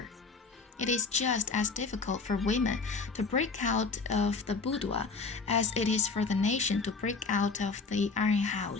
It is just as difficult for women to break out of the boudoir as it is for the nation to break out of the iron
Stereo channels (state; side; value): quieter; right; 4.3 dB